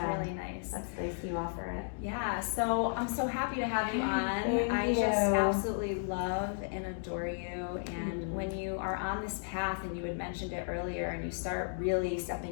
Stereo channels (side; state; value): right; silent; digital silence